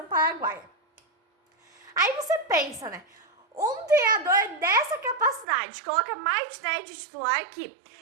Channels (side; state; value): left; drops out; at 5.5 s